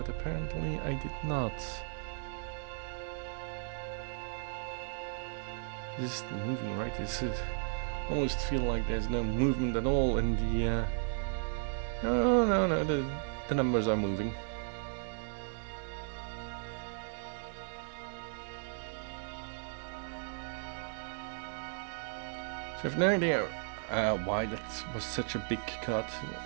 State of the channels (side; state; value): left; silent; 54 dB below the other